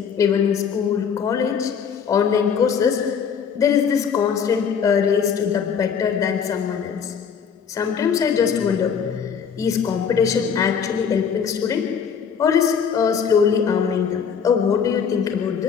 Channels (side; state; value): right; quieter; 6.9 dB